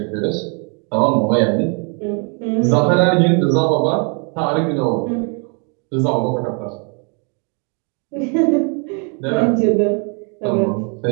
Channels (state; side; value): quieter; left; 36.9 dB